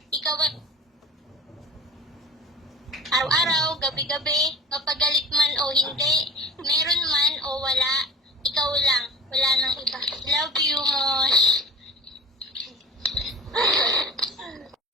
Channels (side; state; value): both; normal; correlation 0.37